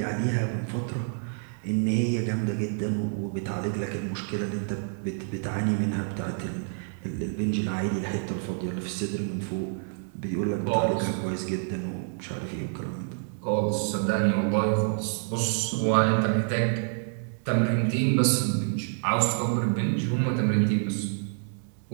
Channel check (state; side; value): silent; left; 57 dB below the other